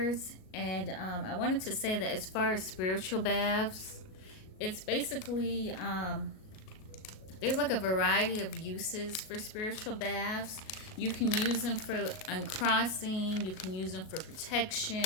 And I wanted to say that as far as spiritual baths, it's basically there's like a variety of uses for spiritual baths. You can use them for uncrossing, you can use them for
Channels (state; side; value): late; right; 37 ms